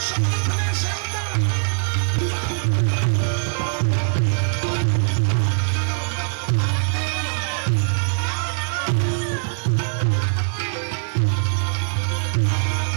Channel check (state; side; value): silent; left; 64 dB below the other